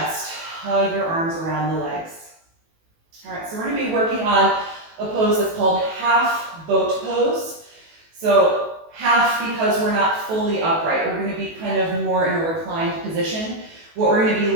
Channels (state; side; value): late; left; 18 ms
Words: Hug your arms around the legs. All right, so we're going to be working on a pose that's called half boat pose. So half because we're not fully upright. We're going to be kind of more in a reclined position. What we're going to